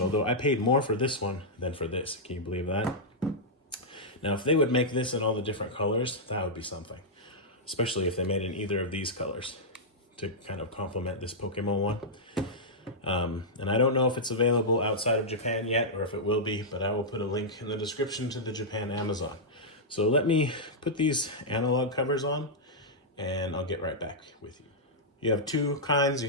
I paid more for this one than for this. Can you believe that? Now, if they would make this in all the different colors, that would be something. Especially if they made in either of these colors to kind of complement this Pokemon one. And I don't know if it's available outside of Japan yet, or if it will be, but I will put a link in the description to the Japan Amazon. So let me put these analog covers on, and I'll get right back with you. You have 2 kinds. You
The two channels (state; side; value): normal; both; correlation -0.09